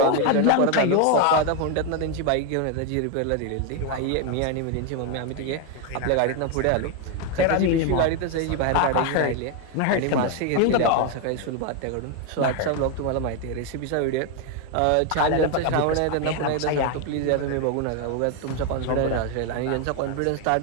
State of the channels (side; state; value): both; different; correlation 0.01